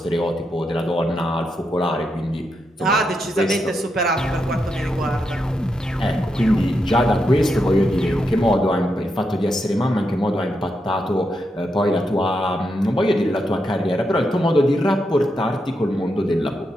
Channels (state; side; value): normal; both; correlation 0.84